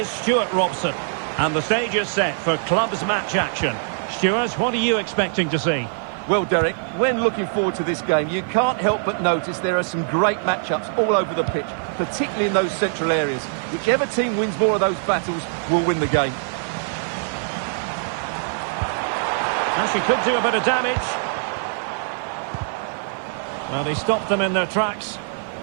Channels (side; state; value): left; silent; digital silence